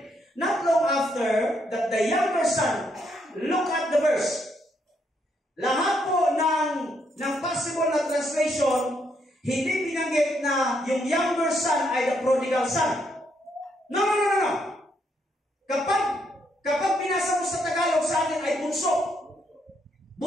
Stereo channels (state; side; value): normal; both; correlation 0.75